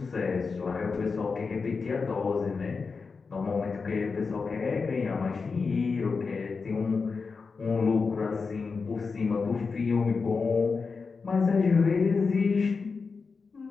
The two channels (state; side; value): quieter; right; 4.8 dB